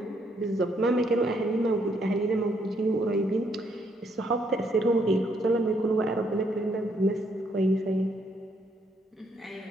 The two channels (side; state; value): both; normal; correlation 0.71